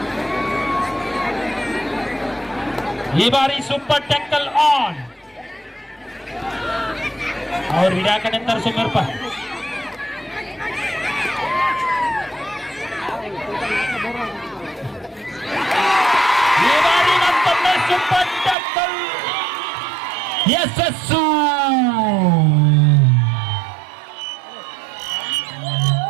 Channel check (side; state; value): left; drops out; at 18.6 s